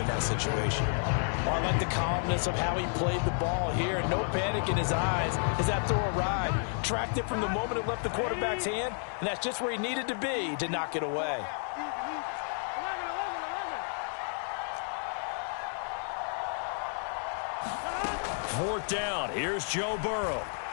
in that situation. Well, I like the calmness of how he played the ball here. No panic in his eyes as that throw arrived. Tracked it from the moment it left the quarterback's hand, and that's just where he needed to be to knock it away. Fourth down. Here's Joe Burrow.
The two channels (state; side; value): silent; right; 57 dB below the other